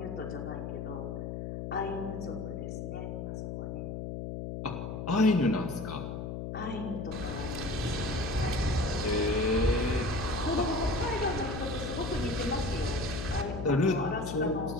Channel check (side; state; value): left; noise; hum, 5 dB below the sound